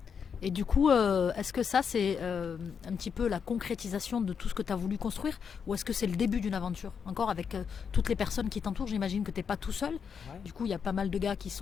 Et du coup, est-ce que ça, c'est un petit peu la concrétisation de tout ce que tu as voulu construire, ou est-ce que c'est le début d'une aventure? Encore avec toutes les personnes qui t'entourent, j'imagine que tu n'es pas tout seul. Ouais. Du coup, il y a pas mal de gars qui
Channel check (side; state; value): right; quieter; 6.7 dB